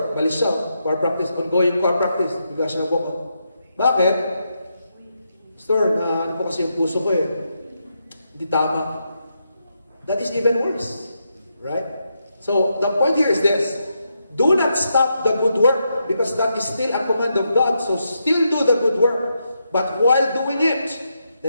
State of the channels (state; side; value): inverted; both; correlation -0.82